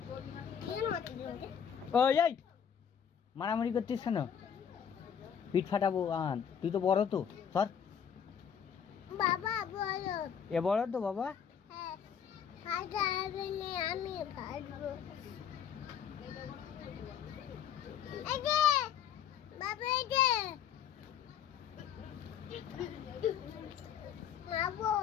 ওই এই মারামারি করছিস কেন? পিঠ ফাটাবো আহান, তুই তো বড় তো, সর। বাবা বলো এ বড় তো বাবা। হ্যাঁ হাত আগে নিয়ে আমি কাটবো এই যে বাবা এই যে মাবো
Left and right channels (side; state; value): right; quieter; 8.2 dB